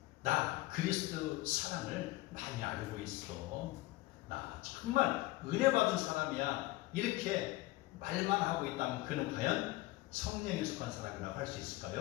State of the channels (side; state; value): right; quieter; 19.2 dB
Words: 나 그리스도 사랑을 많이 알고 있어. 나 정말 은혜 받은 사람이야. 이렇게 말만 하고 있다면 그는 과연 성령에 속한 사람이라고 할 수